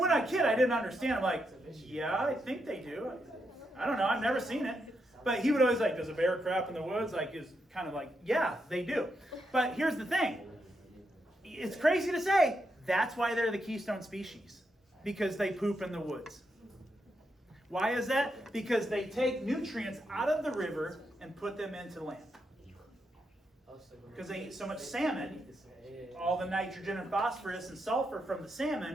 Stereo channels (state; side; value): normal; both; correlation 0.82